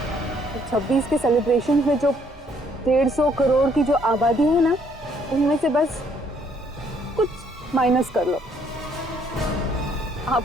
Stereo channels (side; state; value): both; normal; correlation 0.66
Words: 26 के सेलिब्रेशन में जो 150 करोड़ की जो आबादी है ना, उनमें से बस कुछ माइनस कर लो।